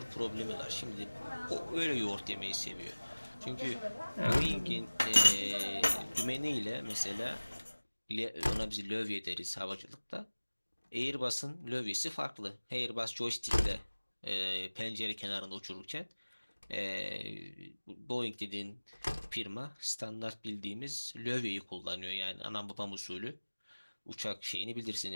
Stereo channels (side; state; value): both; inverted; correlation -1.00